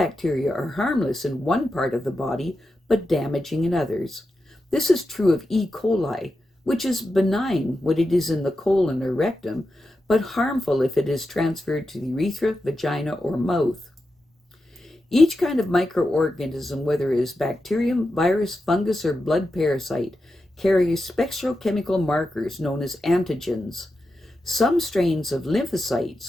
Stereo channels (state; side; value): normal; both; correlation 0.89